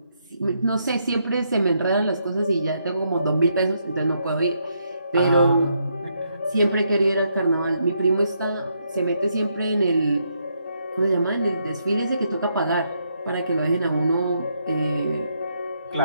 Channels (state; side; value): inverted; both; correlation -0.77